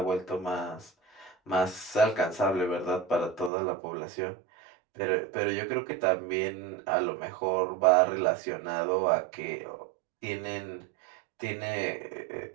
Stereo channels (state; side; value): drops out; left; at 3.5 s